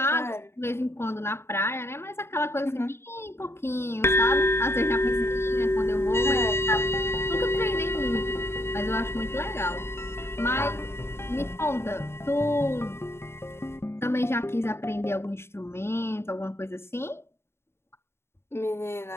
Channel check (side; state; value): right; late; 0.12 ms